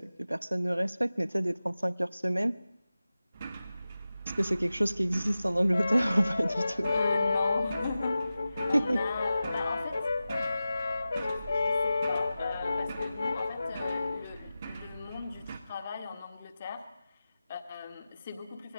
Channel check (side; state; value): both; inverted; correlation -0.95